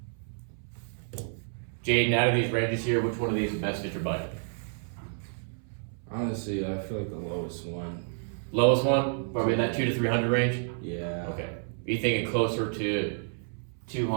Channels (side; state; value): left; silent; 58 dB below the other